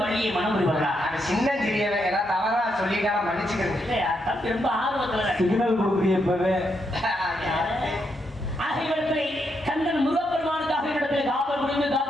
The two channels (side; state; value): both; normal; correlation 0.80